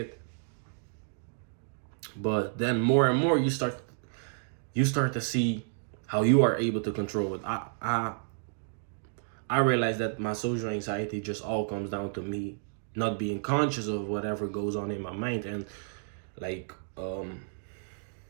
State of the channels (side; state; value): left; silent; digital silence